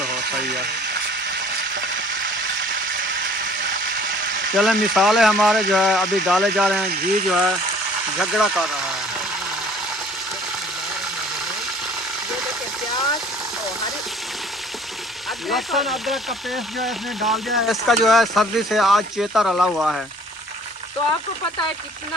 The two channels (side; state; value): both; normal; correlation 0.52